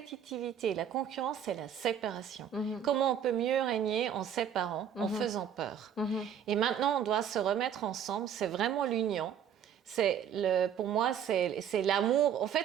la concurrence, c'est la séparation. Comment on peut mieux régner en séparant, en faisant peur. Et maintenant, on doit se remettre ensemble, c'est vraiment l'union. Pour moi, c'est l'amour. En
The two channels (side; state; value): left; quieter; 8.6 dB